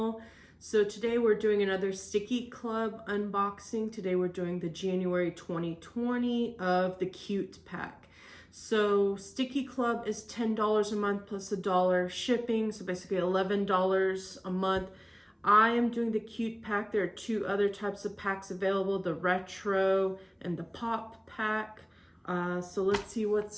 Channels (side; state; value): both; identical; correlation 1.00